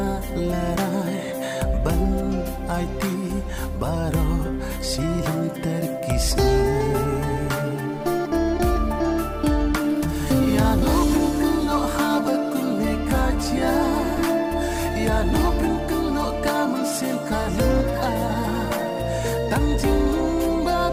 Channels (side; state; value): both; identical; correlation 1.00